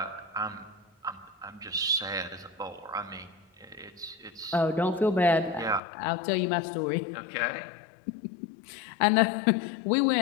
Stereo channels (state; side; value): drops out; right; at 5.8 s